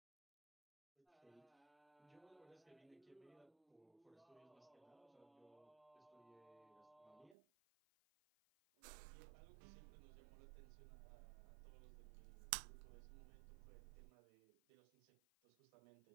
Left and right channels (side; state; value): left; drops out; at 7.4 s